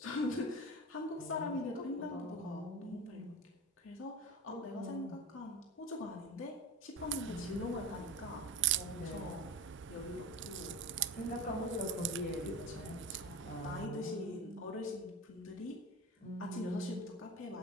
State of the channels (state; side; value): normal; both; correlation 0.27